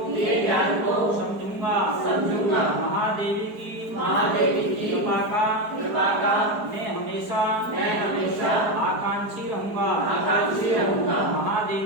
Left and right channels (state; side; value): late; left; 4.7 ms